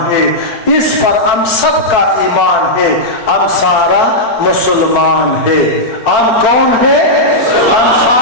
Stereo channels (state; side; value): late; right; 4.4 ms